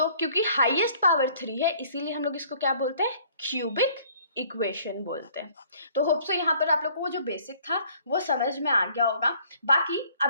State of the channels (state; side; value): inverted; both; correlation -0.58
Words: क्योंकि हाईएस्ट पावर 3 है इसीलिए हम लोग इसको क्या बोलते हैं, क्यूबिक इक्वेशन बोलते हैं। तो होप सो यहाँ पर आप लोग को वो जो बेसिक था वो समझ में आ गया होगा। बाकी